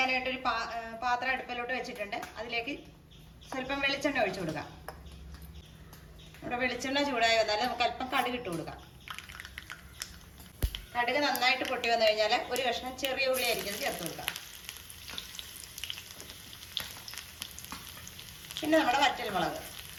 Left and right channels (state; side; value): identical; both; correlation 1.00